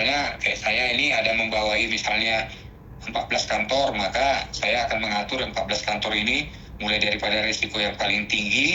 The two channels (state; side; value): identical; both; correlation 1.00